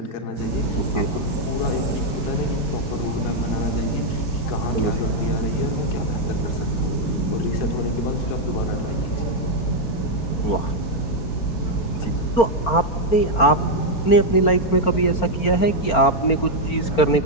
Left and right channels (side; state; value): right; late; 4.4 ms